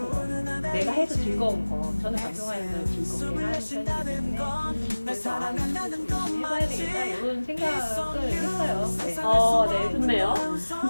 거, 내가 해서 즐거운 거. 저는 방송하는 걸 즐겁게 하는 편이기 때문에 그래서 열심히 해봐야 되겠다 이런 생각을 했어요. 네. 네, 좋네요.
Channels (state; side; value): inverted; both; correlation -1.00